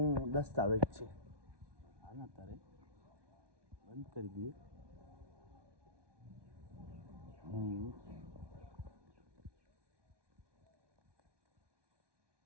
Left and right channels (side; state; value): left; late; 1.2 ms